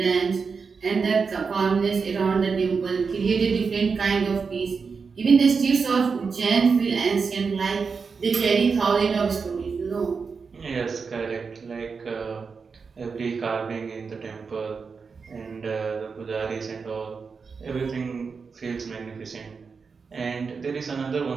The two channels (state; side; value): quieter; left; 5.2 dB